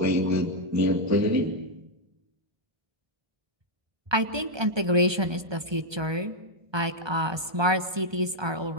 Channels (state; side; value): late; left; 1.2 ms